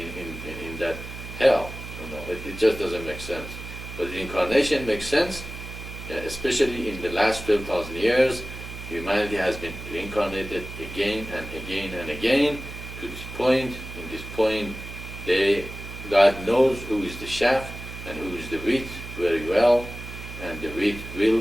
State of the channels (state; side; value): noise; right; hum, 11 dB below the sound